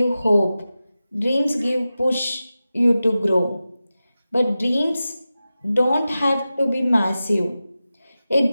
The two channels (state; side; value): inverted; both; correlation -0.94